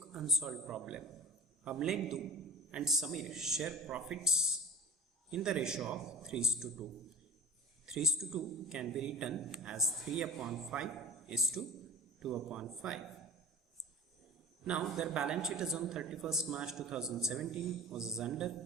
unsolved problem. Amlendu and Samir share profits in the ratio of 3:2. 3:2 can be written as 3/5 is to 2/5. Now their balance sheet is on 31st March 2017 was as under.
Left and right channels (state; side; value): normal; both; correlation 0.37